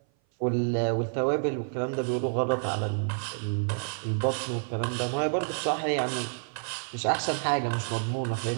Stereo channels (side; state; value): left; silent; 56 dB below the other